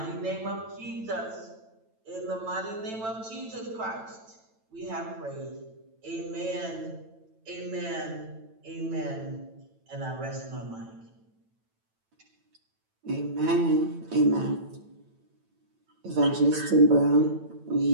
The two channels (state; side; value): late; left; 9.0 ms